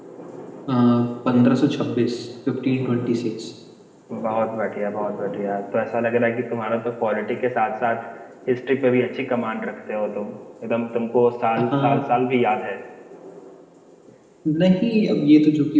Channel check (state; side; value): identical; both; correlation 1.00